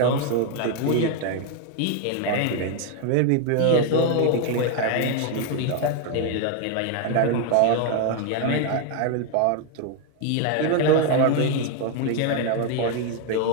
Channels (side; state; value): both; different; correlation 0.01